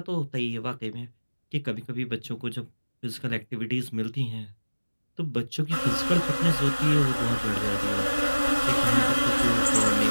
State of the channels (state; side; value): inverted; both; correlation -1.00